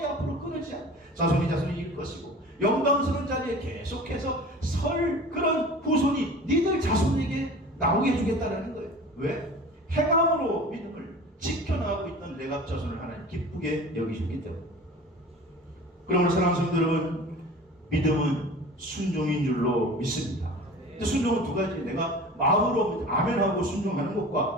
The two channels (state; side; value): normal; both; correlation 0.40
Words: 앞으로 끊어지지 않아. 자손이 이길 것이고 영광스러운 자리에 계속해서 설 그런 후손이 니들 자손에게 나오게 해주겠다라는 거예요. 왜? 행함으로 믿음을 지켜나가고 있던 레갑 자손을 하나님 기쁘게 여기셨기 때문에. 그러므로 사랑하는 성도 여러분, 믿음은 순종인 줄로 믿습니다. 근데 순종은 두 가지. 내가 마음으로 아멘하고 순종하는